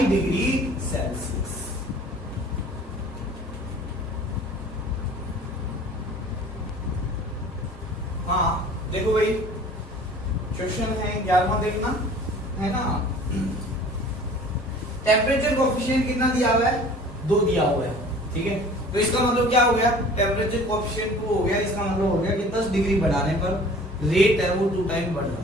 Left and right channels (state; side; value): normal; both; correlation 0.47